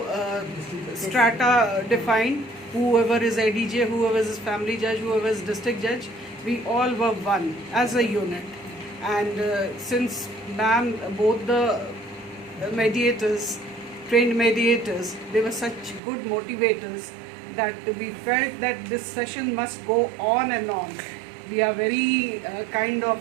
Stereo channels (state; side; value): drops out; left; at 16.0 s